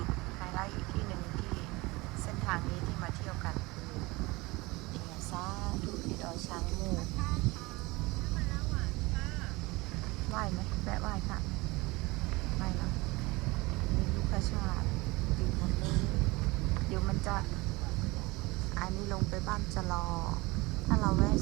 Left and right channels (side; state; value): left; quieter; 22.8 dB